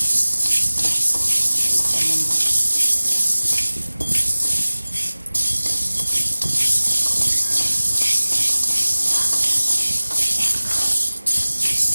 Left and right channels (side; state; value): both; inverted; correlation -1.00